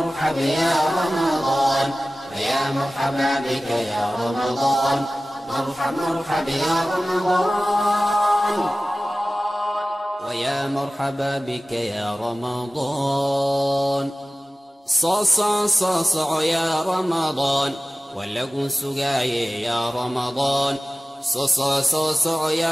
يا رمضان ويا مرحبا بك يا رمضان مرحب مرحب يا رمضان ويا مرحبا بك يا رمضان صاصع يا رمضان ولقوا سقاي يا رمضان صاصع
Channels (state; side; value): normal; both; correlation 0.97